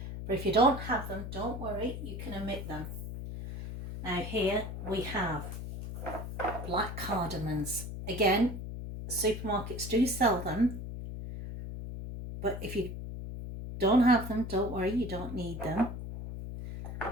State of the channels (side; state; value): left; noise; hum, 7 dB below the sound